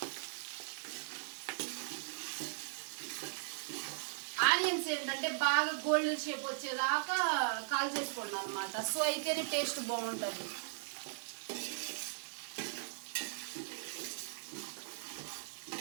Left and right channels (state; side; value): silent; left; digital silence